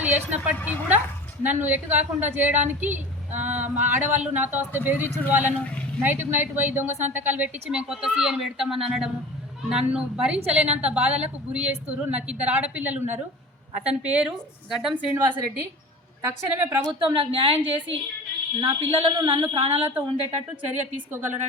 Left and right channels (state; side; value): normal; both; correlation 0.37